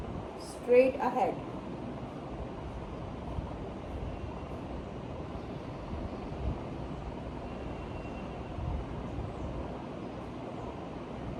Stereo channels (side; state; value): both; identical; correlation 1.00